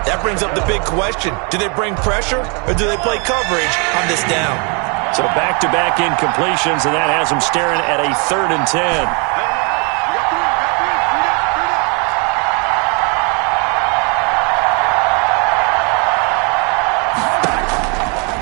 brings up the big question. Do they bring pressure, or do they play coverage on this down? So back-to-back incompletions, and that has them staring at a 3rd and 10.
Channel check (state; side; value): quieter; left; 34.1 dB